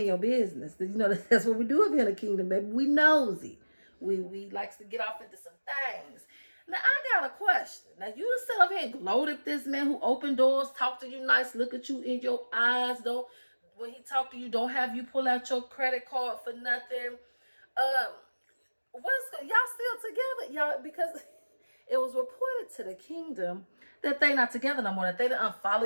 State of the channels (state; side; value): inverted; both; correlation -1.00